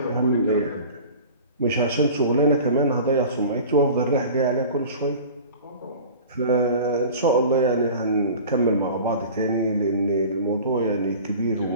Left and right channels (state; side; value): inverted; both; correlation -0.39